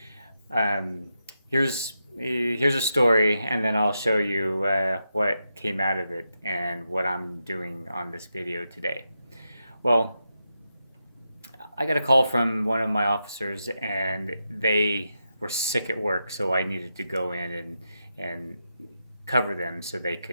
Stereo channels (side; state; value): both; inverted; correlation -0.86